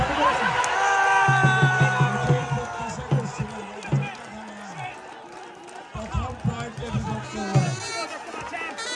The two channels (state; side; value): identical; both; correlation 1.00